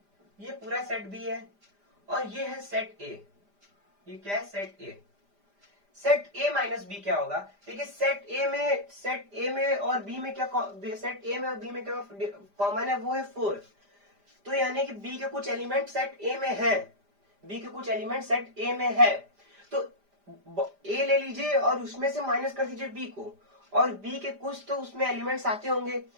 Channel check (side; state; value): left; late; 5.0 ms